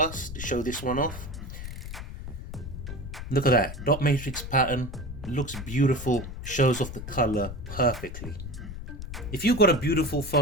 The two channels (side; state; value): left; noise; rumble, 9 dB below the sound